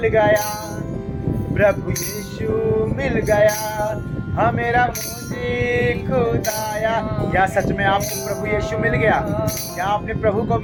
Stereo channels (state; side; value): identical; both; correlation 1.00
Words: गया, प्रभु यीशु मिल गया, हाँ मेरा मुझे खुदाया। क्या सच में आपको प्रभु यीशु मिल गया? क्या आपने प्रभु को